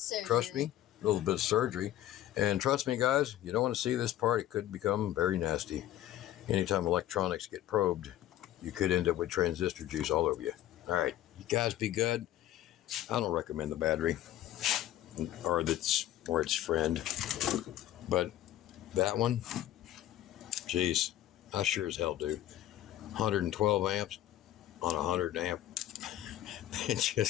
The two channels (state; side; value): quieter; right; 13.2 dB